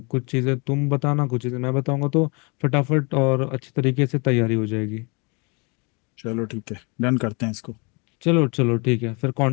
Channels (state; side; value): quieter; right; 31.2 dB